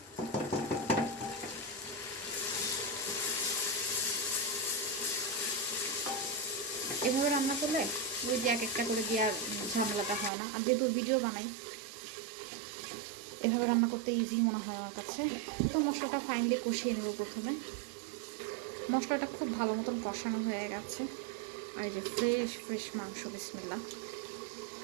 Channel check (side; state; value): left; drops out; at 10.3 s